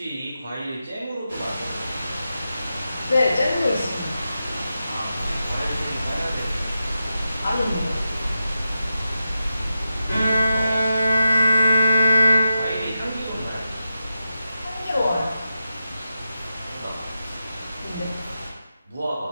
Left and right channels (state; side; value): inverted; both; correlation -0.89